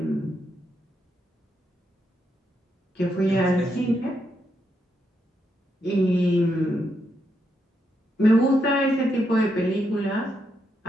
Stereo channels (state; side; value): normal; both; correlation 0.80